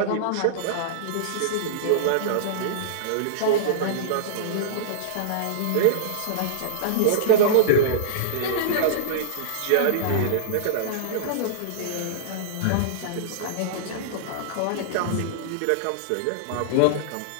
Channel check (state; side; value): different; both; correlation -0.02